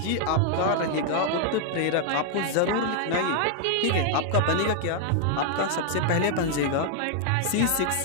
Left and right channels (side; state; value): both; different; correlation 0.00